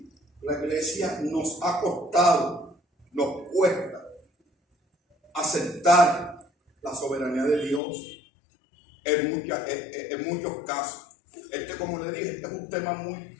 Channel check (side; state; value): right; drops out; at 7.8 s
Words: nos ha costado, nos cuesta aceptar la soberanía de Dios en muchos casos. Como le dije, es un tema muy